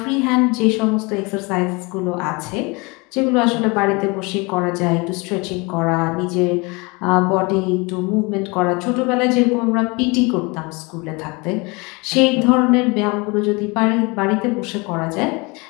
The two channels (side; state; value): right; quieter; 27.3 dB